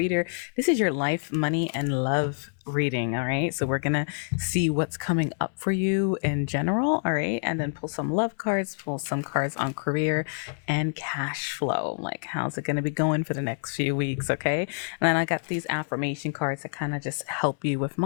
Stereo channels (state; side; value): silent; right; 60 dB below the other